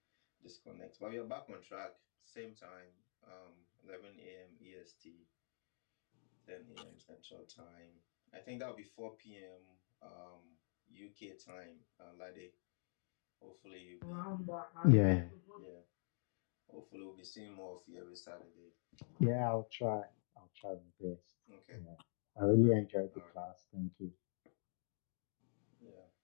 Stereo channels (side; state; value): right; silent; digital silence